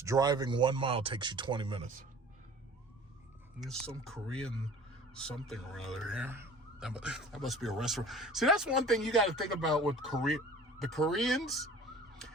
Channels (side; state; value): both; normal; correlation 0.45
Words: driving 1 mile takes you 20 minutes. There's some Korean something or other here. That must be a restaurant. See, that's one thing you got to think about with Korea. The Koreans,